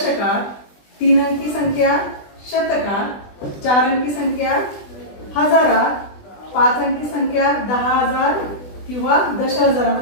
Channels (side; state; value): right; late; 20 ms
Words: तीन अंकी संख्या शतकात, चार अंकी संख्या हजारात, पाच अंकी संख्या 10,000 किंवा